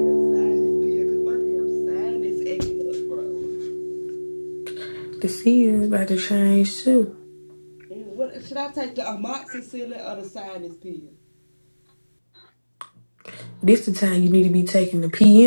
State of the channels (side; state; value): both; inverted; correlation -1.00